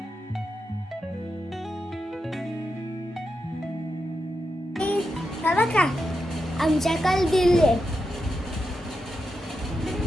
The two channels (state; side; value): normal; both; correlation 0.87